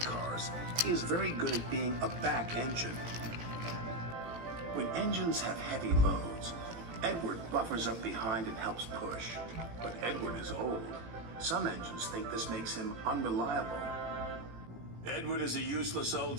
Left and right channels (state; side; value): late; left; 18 ms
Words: cars, he is very good at being a back engine. When engines have heavy loads, Edward buffers up behind and helps push. But Edward is old. Some engines think this makes him unreliable. Edward is a useless